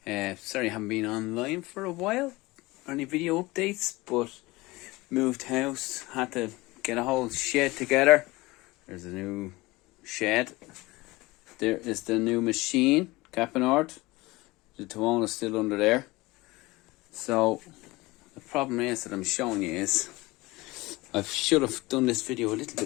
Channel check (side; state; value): right; quieter; 21.4 dB